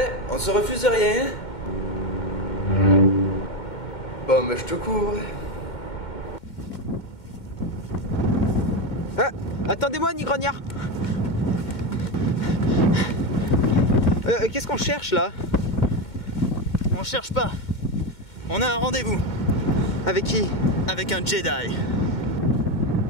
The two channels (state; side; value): late; right; 2.2 ms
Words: on se refuse rien. Bon, mais je te couvre. Ah, attendez-moi, Nigrognard. Qu'est-ce qu'on cherche là? On cherche pas. On a un rendez-vous. Avec qui? Avec un Jedi.